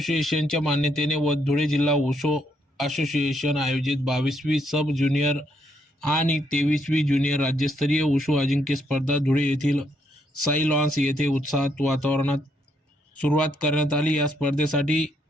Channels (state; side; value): normal; both; correlation 0.74